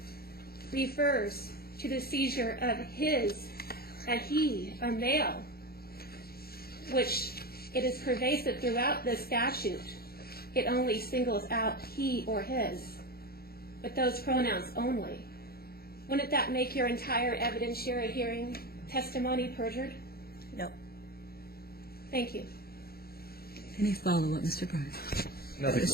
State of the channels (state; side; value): late; right; 0.44 ms